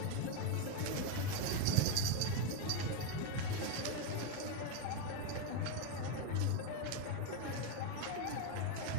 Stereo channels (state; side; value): different; both; correlation 0.02